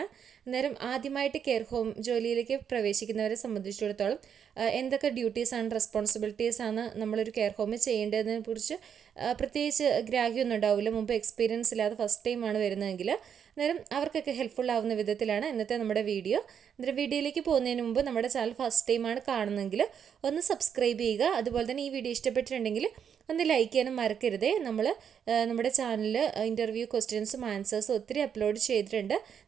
അന്നേരം ആദ്യമായിട്ട് കെയർ ഹോം ജോലിയിലേക്ക് പ്രവേശിക്കുന്നവരെ സംബന്ധിച്ചിടത്തോളം എന്തൊക്കെ ഡ്യൂട്ടീസ് ആൻഡ് റെസ്പോൺസിബിലിറ്റീസ് ആണ് നമ്മളൊരു കെയർ ഹോമിൽ ചെയ്യേണ്ടതിനെ കുറിച്ച് പ്രത്യേകിച്ച് ഗ്രാഹ്യമൊന്നും ഉണ്ടാവില്ല. മുമ്പ് എക്സ്പീരിയൻസ് ഇല്ലാതെ ഫസ്റ്റ് ടൈമാണ് വരുന്നതെങ്കിൽ അന്നേരം അവർക്കൊക്കെ ഹെൽപ്ഫുൾ ആവുന്ന വിധത്തിലാണ് ഇന്നത്തെ നമ്മുടെ വീഡിയോ. അന്നേരം വീഡിയോയിലേക്ക് പോകുന്നതിന് മുമ്പ് നമ്മുടെ ചാനൽ ഫസ്റ്റ് ടൈമാണ് കാണുന്നതെങ്കിൽ ഒന്ന് സബ്സ്ക്രൈബ് ചെയ്യുക. അതുപോലെ തന്നെ ഈ വീഡിയോ ഇഷ്ടപ്പെട്ടിട്ടുണ്ടെങ്കിൽ ഒന്ന് ലൈക്ക് ചെയ്യാനും മറക്കരുതേ. നമ്മുടെ ചാനലിൽ ഇൻ്റർവ്യൂ ക്വസ്റ്റ്യൻസും ആൻസേഴ്സും ഒത്തിരി അപ്ലോഡ് ചെയ്തിട്ടുണ്ട്.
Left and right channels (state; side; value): quieter; left; 7.9 dB